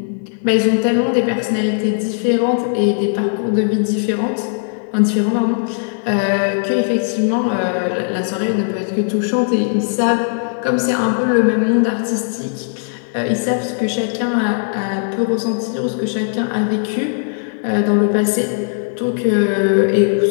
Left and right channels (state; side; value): silent; right; digital silence